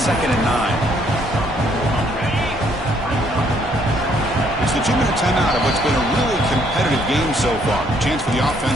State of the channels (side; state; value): both; normal; correlation 0.67